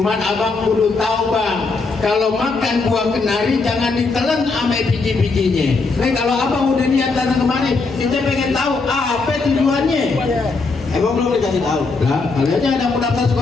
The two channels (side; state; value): right; quieter; 4.0 dB